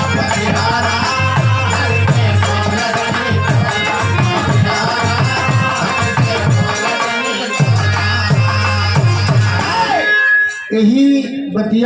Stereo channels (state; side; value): identical; both; correlation 1.00